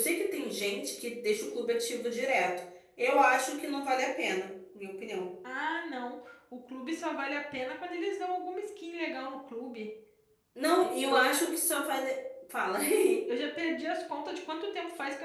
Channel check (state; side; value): identical; both; correlation 1.00